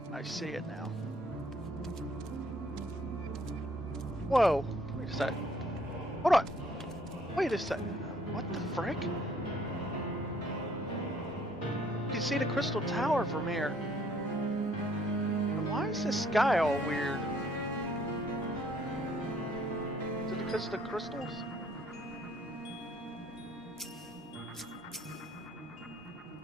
I see it now. Whoa, wait a sec. Hold on. Wait a second. What the frick? You can see the crystal tower from here. And why is this sky all weird? Because of the crystals?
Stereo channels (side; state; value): both; normal; correlation 0.63